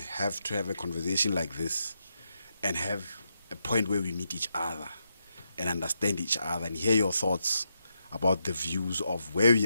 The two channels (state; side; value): inverted; both; correlation -0.83